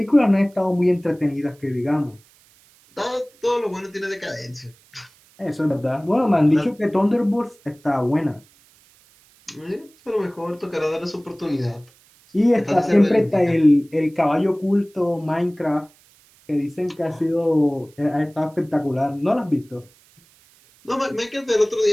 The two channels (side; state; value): right; noise; hiss, 30 dB below the sound